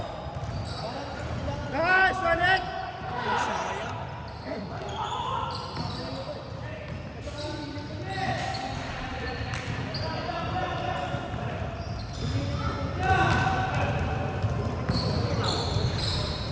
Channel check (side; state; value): both; identical; correlation 1.00